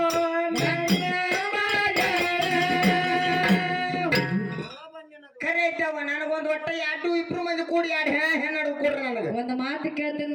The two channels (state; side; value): identical; both; correlation 1.00